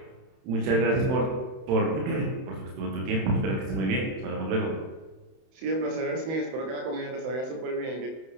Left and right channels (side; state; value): left; late; 31 ms